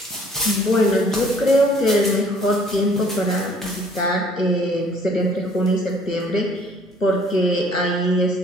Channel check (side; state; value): both; normal; correlation 0.57